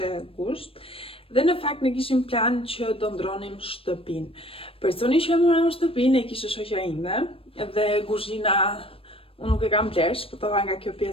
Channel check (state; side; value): late; right; 0.27 ms